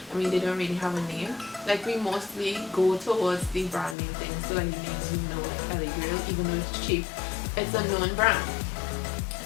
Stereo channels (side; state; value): right; drops out; at 4.0 s